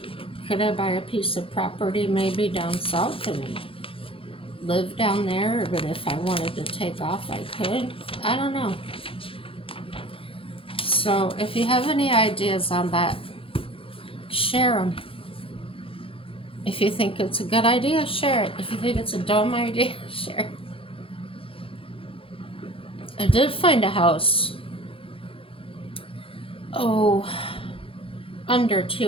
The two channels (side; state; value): right; late; 0.26 ms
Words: could I buy a piece of property maybe down south and live down there? But if I wanted to take off, I could. I don't know. So if you have any ideas on that, share them. If you think it's a good idea, share it. If you think it's a dumb idea, share it. I did find a house, under